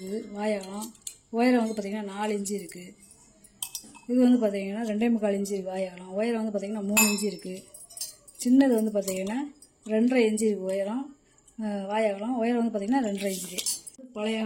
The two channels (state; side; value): identical; both; correlation 1.00